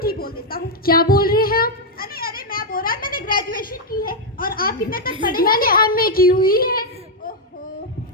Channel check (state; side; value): normal; both; correlation -0.01